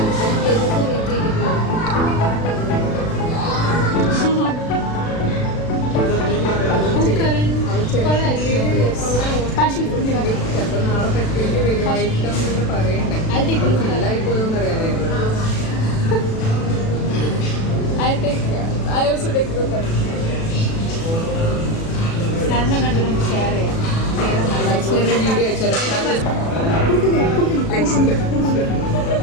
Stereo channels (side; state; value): right; late; 36 ms